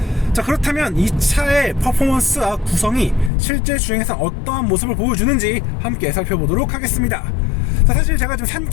자, 그렇다면 이 차의 퍼포먼스와 구성이 실제 주행에서 어떠한 모습을 보여주는지 함께 살펴보도록 하겠습니다. 자, 사실 제가 지금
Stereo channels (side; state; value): right; drops out; at 3.3 s